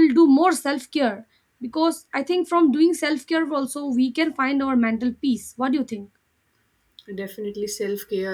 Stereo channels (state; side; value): identical; both; correlation 1.00